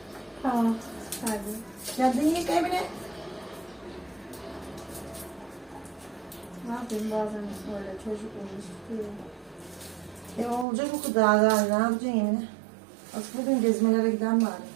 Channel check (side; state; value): left; drops out; at 10.7 s